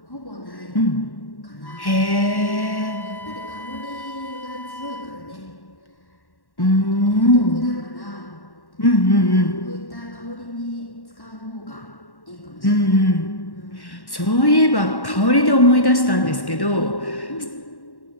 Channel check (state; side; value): late; right; 1.1 ms